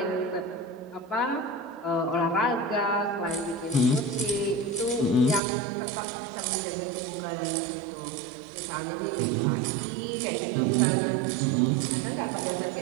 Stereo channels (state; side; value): drops out; left; at 5.4 s